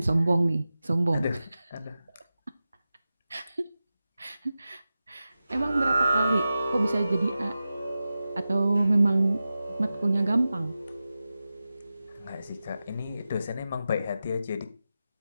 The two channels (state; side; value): inverted; both; correlation -0.93